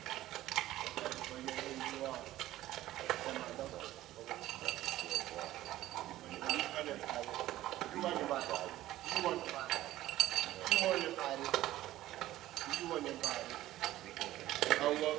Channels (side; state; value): left; quieter; 14.9 dB